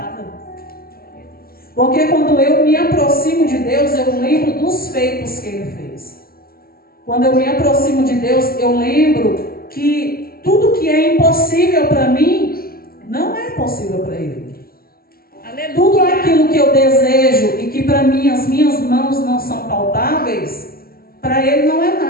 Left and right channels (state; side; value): late; right; 0.43 ms